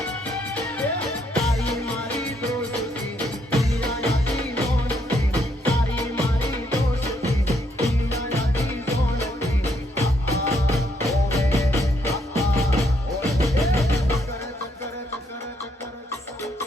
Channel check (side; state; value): both; normal; correlation 0.73